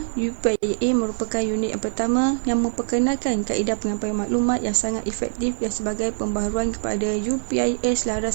UPIA merupakan unit yang pertama yang memperkenalkan kaedah penyampaian maklumat yang sangat efektif dan sebagai pembaharuan kepada UPIA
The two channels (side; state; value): left; silent; digital silence